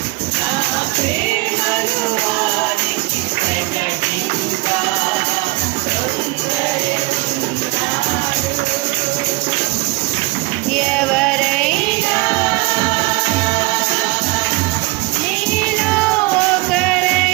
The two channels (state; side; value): quieter; left; 22.6 dB